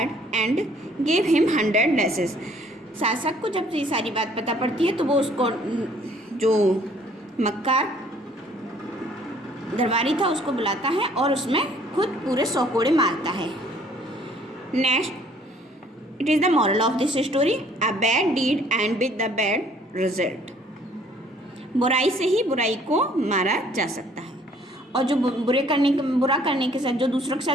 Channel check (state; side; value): normal; both; correlation 0.59